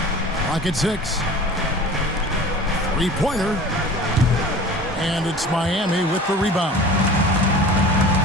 Clock at 6. Three-pointer. And it's Miami with the rebound.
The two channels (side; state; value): both; normal; correlation 0.40